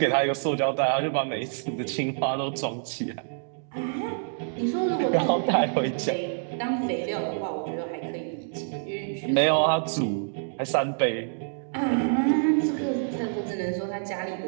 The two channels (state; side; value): silent; left; digital silence